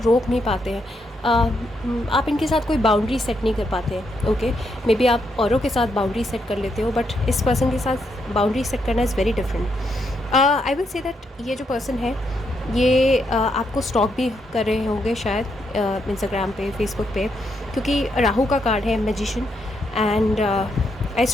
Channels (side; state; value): both; normal; correlation 0.78